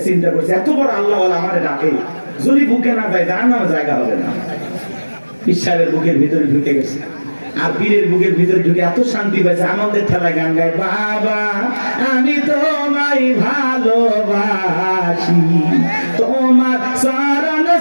চিন্তা করছে এত বড় আল্লাহ আমারে ডাকে, যদি বুকে না যায় যার নামে জায়গা হবে না। ঈশ্বরের বুকের ভিতরে ঢুকে গেছে, আর পীরের বুকের ভিতরে ঢুকে এত শান্তি পাইছে, আনন্দের ঠেলায় গান গায়, বাবা আমি তোমায় ভালোবাসি, তোমার চরণ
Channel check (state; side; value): inverted; both; correlation -1.00